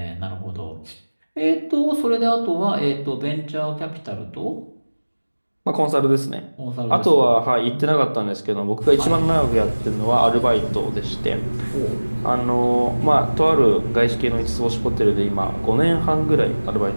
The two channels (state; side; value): inverted; both; correlation -1.00